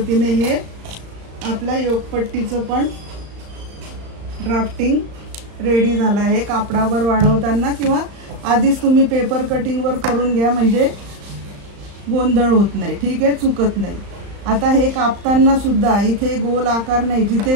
हे आपल्या योगपट्टीचं पण ड्राफ्टिंग रेडी झालं आहे। कापडावर वाढवताना किंवा आधीच तुम्ही पेपर कटिंगवर करून घ्या, म्हणजे गोंधळ होत नाही, ठीक आहे, चुकत नाही। आता हे कापताना सुद्धा इथे गोल आकार नाही,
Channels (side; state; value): left; late; 35 ms